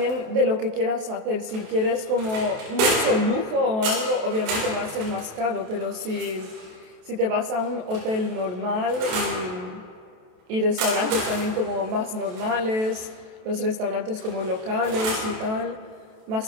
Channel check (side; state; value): left; late; 28 ms